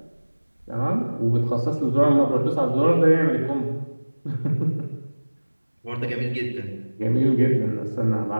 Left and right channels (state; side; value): inverted; both; correlation -1.00